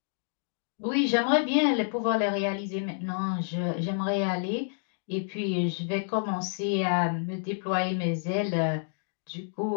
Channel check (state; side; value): silent; right; digital silence